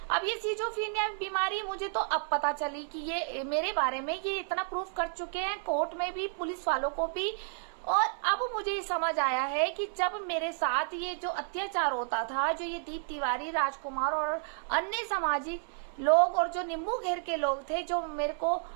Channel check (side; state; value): left; silent; 57 dB below the other